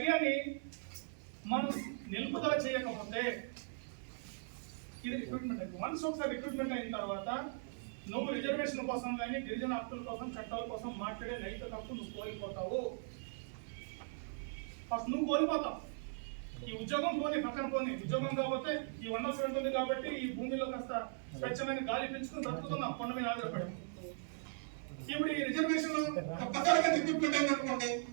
మనం నిలుపుదల చేయకపోతే ఇది రిక్రూట్మెంట్ అయింది. వన్స్ ఒకసారి రిక్రూట్మెంట్ అయిన తర్వాత నువ్వు రిజర్వేషన్ కోసం కానీ గిరిజన హక్కుల కోసం చట్టాల కోసం మాట్లాడే నైతిక హక్కు నువ్వు కోల్పోతావు. ఫస్ట్ నువ్వు కోల్పోతావు. ఈ ఉద్యోగం పోనీ పక్కన పోనీ, ఉద్యోగం కాకపోతే ఈ 100% ఉంది కాబట్టి ఈ భూమిలో కాస్త స్వచ్ఛమైన గాలి పెంచుకుని బ్రతుకుతున్నాం కొండ మీద ఆధారపడి. ఇప్పుడు ఈ రిజర్వేషన్ రిక్రూట్మెంట్ అయిందనుకోండి,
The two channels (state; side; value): silent; left; digital silence